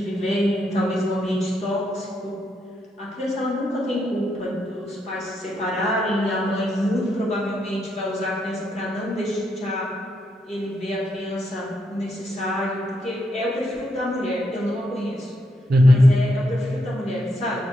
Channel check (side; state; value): both; normal; correlation 0.79